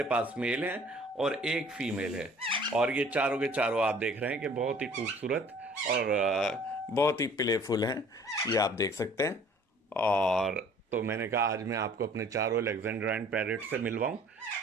पास मेल हैं और एक फीमेल है। और ये चारों के चारों आप देख रहे हैं कि बहुत ही खूबसूरत और बहुत ही प्लेफुल हैं, ये आप देख सकते हैं। और तो मैंने कहा आज मैं आपको अपने चारों अलेक्जेंड्राइन पैरट्स से मिलवाऊं।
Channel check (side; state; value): both; normal; correlation 0.53